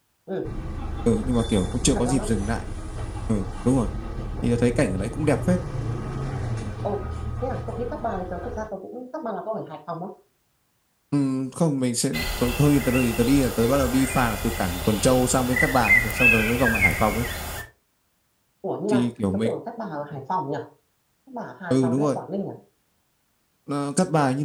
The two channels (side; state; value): both; identical; correlation 1.00